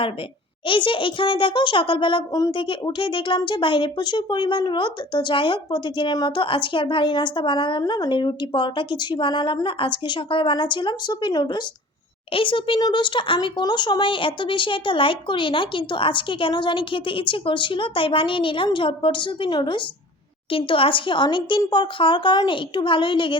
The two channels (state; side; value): normal; both; correlation 0.44